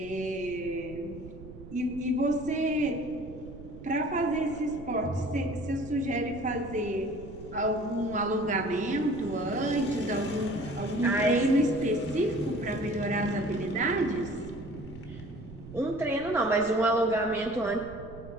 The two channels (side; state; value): right; noise; rumble, 15 dB below the sound